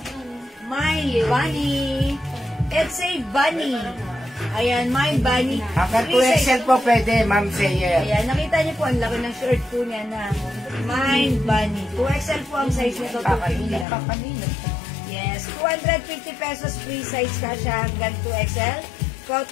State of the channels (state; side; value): drops out; right; at 13.9 s